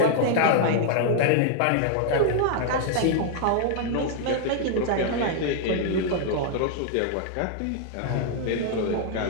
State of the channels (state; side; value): different; both; correlation 0.00